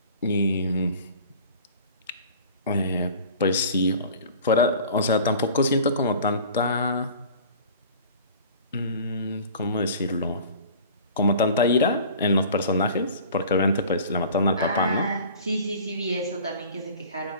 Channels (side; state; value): both; inverted; correlation -0.43